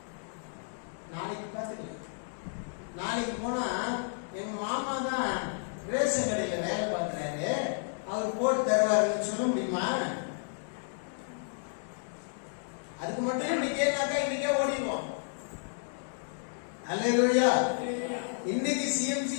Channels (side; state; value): right; silent; 57 dB below the other